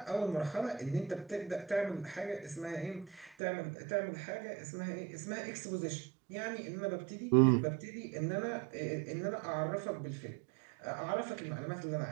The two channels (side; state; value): left; drops out; at 3.4 s